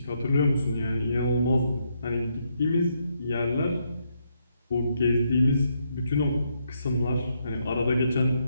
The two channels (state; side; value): inverted; both; correlation -0.77